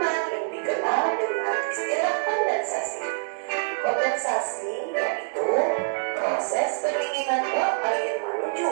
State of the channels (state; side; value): silent; left; digital silence